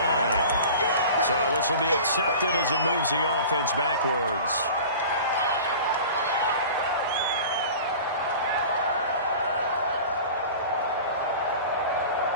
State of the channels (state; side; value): inverted; both; correlation -0.39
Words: So this will be accepted as it moves the offense backwards.